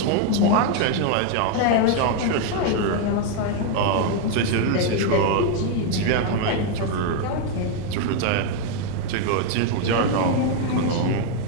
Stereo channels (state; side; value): different; both; correlation 0.01